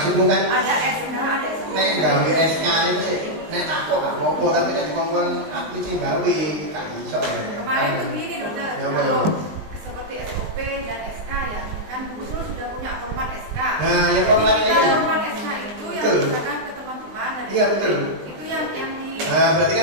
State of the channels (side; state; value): left; late; 19 ms